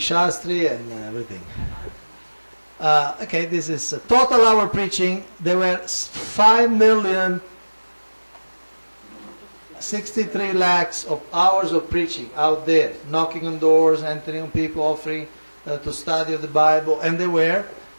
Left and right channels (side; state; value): both; inverted; correlation -1.00